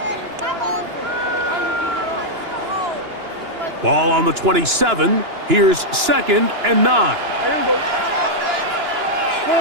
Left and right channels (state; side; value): late; left; 2.9 ms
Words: Ball on the 27. Here's 2nd and 9. Here we go. All